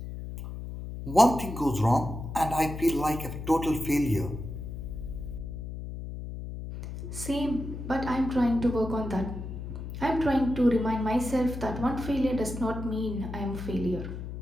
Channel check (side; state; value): left; noise; hum, 8 dB below the sound